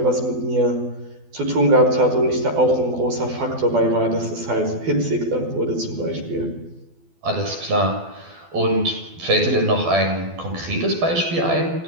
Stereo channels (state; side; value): late; left; 12 ms